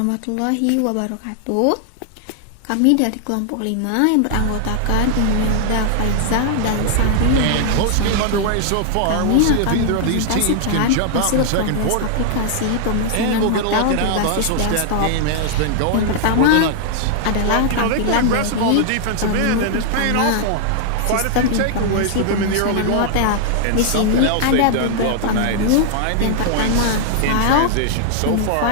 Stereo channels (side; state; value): both; different; correlation 0.00